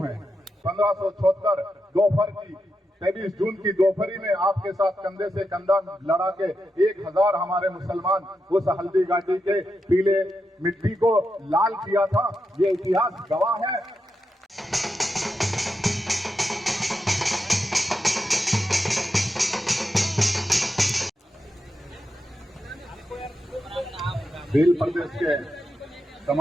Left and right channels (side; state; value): both; normal; correlation 0.86